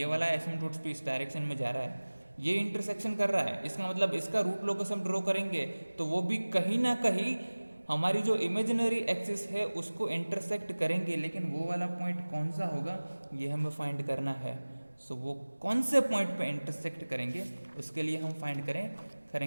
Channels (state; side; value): inverted; both; correlation -1.00